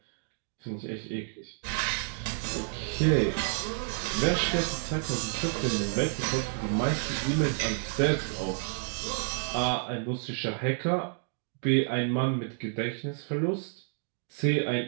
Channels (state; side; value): silent; left; 58 dB below the other